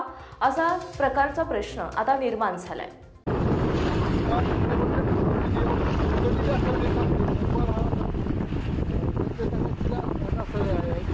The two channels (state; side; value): identical; both; correlation 1.00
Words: असा प्रकारचा प्रश्न आता निर्माण झालाय।